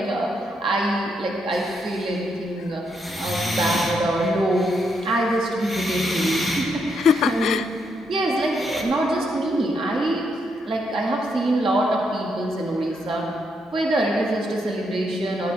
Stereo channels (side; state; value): both; normal; correlation 0.78